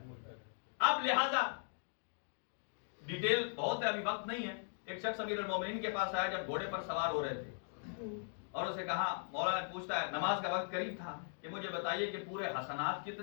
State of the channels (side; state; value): right; silent; digital silence